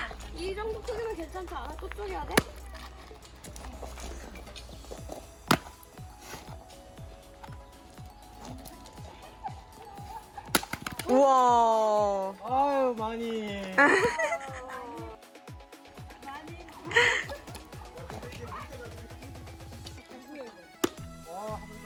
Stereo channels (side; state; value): both; identical; correlation 1.00